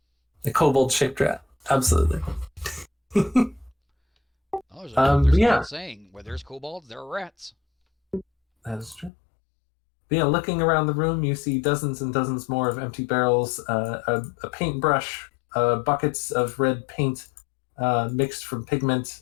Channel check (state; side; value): drops out; right; at 9.1 s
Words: kobold-shaped rat. Absolutely. Oh, there's an yeah. old saying, where there's kobolds, there are rats. That is true. But yeah, looking around the room, you see dozens and dozens more of empty barrels, a paintbrush, buckets of red paint mixed from pigment.